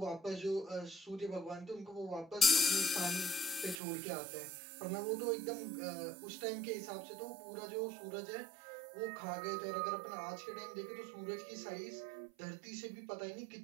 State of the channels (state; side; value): drops out; left; at 3.8 s